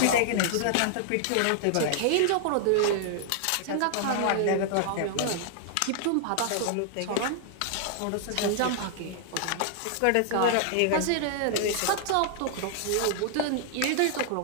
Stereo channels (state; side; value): different; both; correlation -0.01